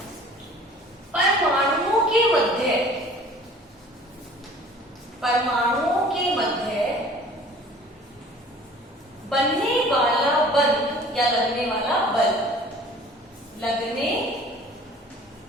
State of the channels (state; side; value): normal; both; correlation 0.49